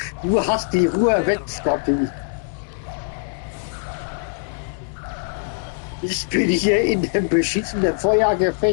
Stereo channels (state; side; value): silent; right; digital silence